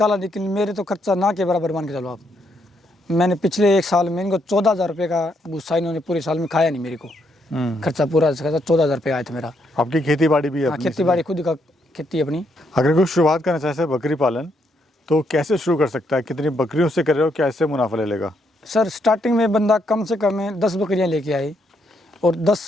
लेकिन मेरे तो खर्चा ना के बराबर मान के चलो आप। मैंने पिछले 1 साल में इनको 14,000 रुपये का भूसा इन्होंने पूरे साल में खाया नहीं मेरे को। खर्चा पूरा खर्चा 14,000 रुपये आया था मेरा। आपकी खेती बाड़ी भी है? हाँ, खेती बाड़ी खुद का खेती अपनी। अगर कोई शुरुआत करना चाहे बकरी पालन तो कैसे शुरू कर सकता है? कितनी बकरियों से कर रहे हो, कैसे मुनाफा ले लेगा? सर स्टार्टिंग में बंदा कम से कम 10 बकरियाँ लेके आए और 10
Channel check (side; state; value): both; normal; correlation 0.76